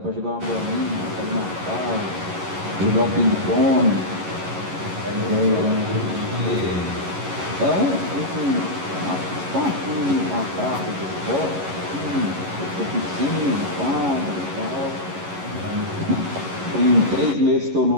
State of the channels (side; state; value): left; late; 11 ms